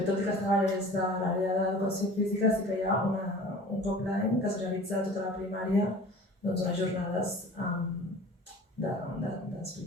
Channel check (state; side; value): normal; both; correlation 0.43